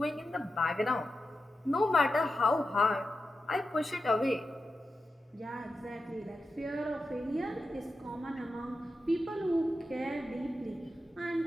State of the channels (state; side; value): normal; both; correlation 0.90